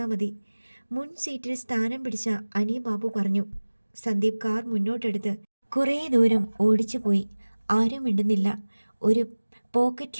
മതി. മുൻ സീറ്റിൽ സ്ഥാനം പിടിച്ച അനിബാബു പറഞ്ഞു. സന്ദീപ് കാർ മുന്നോട്ടെടുത്ത് കുറേ ദൂരം ഓടിച്ചു പോയി. ആരും മിണ്ടുന്നില്ല. ഒരു പോക്കറ്റ്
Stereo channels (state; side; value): inverted; both; correlation -1.00